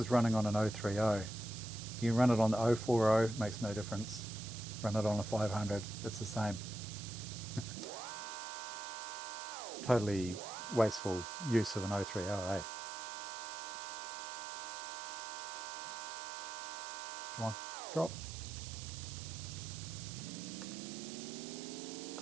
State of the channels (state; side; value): noise; right; hiss, 10 dB below the sound